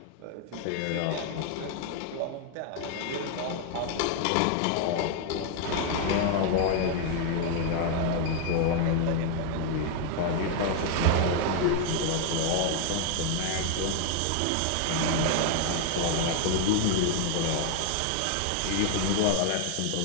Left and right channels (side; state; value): both; different; correlation 0.00